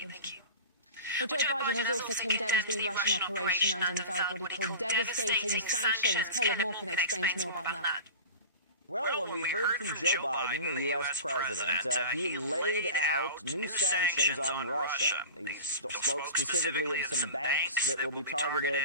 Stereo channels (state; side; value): inverted; both; correlation -0.33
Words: you. Well, Joe Biden has also condemned the Russian operation and unveiled what he called devastating sanctions. Caleb Morgan explains more about that. Well, when we heard from Joe Biden, the U.S. president, he laid out new sanctions on Russia. He spoke specifically of some banks that will be